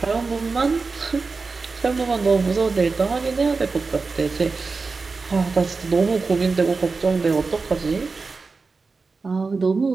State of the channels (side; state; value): left; quieter; 4.3 dB